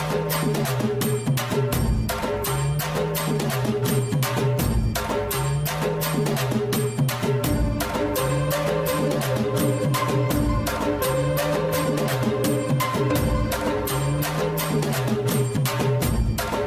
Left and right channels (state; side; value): identical; both; correlation 1.00